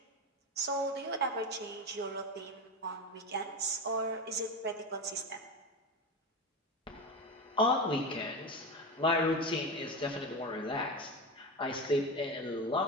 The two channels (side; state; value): both; normal; correlation 0.21